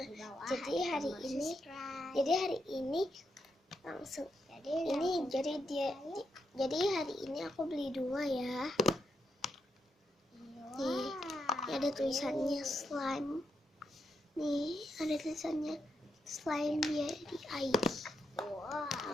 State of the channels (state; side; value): normal; both; correlation 0.79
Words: Jadi hari ini langsung jadi hari ini aku beli 2 ya. Nih, ada tulisannya slime. Nih, ada tulisannya slime dia di ID.